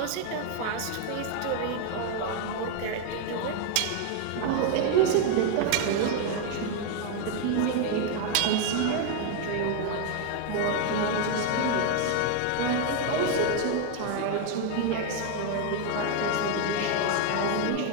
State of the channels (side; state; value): both; different; correlation 0.01